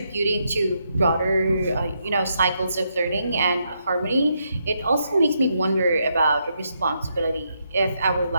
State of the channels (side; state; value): both; inverted; correlation -0.79